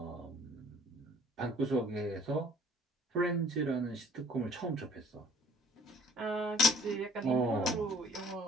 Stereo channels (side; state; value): both; normal; correlation 0.54